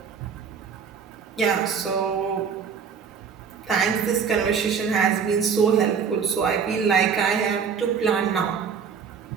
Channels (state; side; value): quieter; left; 6.5 dB